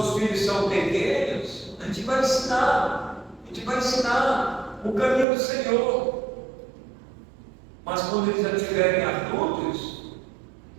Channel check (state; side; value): drops out; left; at 5.2 s